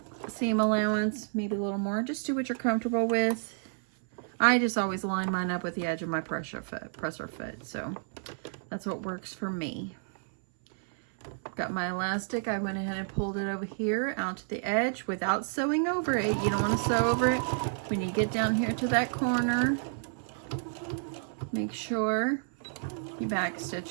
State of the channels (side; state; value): left; silent; 58 dB below the other